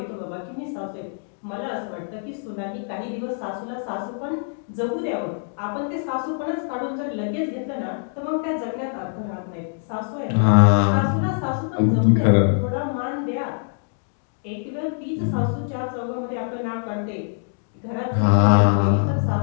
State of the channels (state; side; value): silent; right; 63 dB below the other